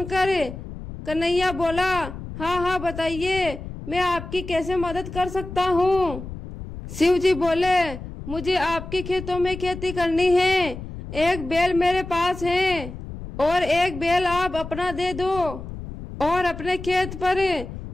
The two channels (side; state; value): left; noise; rumble, 11 dB below the sound